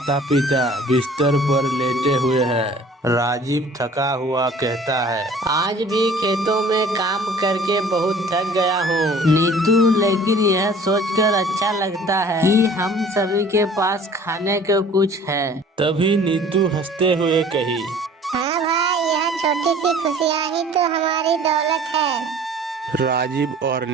पिता बिस्तर पर लेटे हुए हैं। राजीव थका हुआ कहता है, आज भी खेतों में काम करके बहुत थक गया हूँ नीतू, लेकिन यह सोचकर अच्छा लगता है कि हम सभी के पास खाने को कुछ है। तभी नीतू हंसते हुए कही, हाँ भाई, यह छोटी सी खुशियाँ ही तो हमारी दौलत है। राजीव और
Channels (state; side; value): normal; both; correlation 0.50